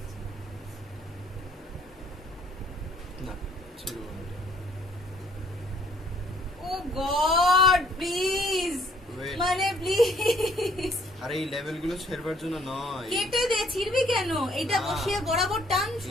না ছিল না। ও গড প্লিজ, Wait. মানে প্লিজ আরে এই লেভেলগুলো ছেড়বার জন্য নয়। কেটে দে, ছিড়বি কেন? এটা না। বসিয়ে বরাবর টান,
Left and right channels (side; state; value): both; normal; correlation 0.63